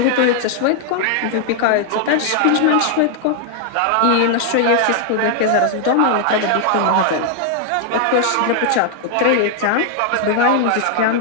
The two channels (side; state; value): both; different; correlation 0.00